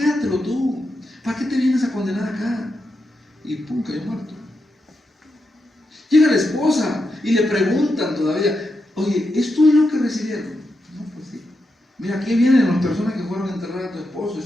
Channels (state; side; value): normal; both; correlation 0.86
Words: tú. ¿Para qué te vienes a condenar acá? Y pum, cayó muerto. Llega la esposa y le preguntan todavía: oye, ¿esto es lo que recibieron? No, pues sí. Mira, aquí vienen las personas que fueron a enterrar a tu esposo y